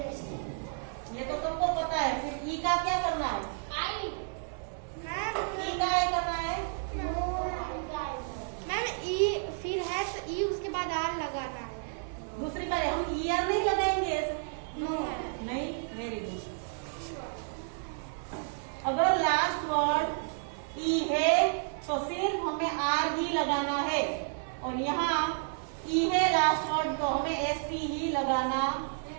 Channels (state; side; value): silent; left; 57 dB below the other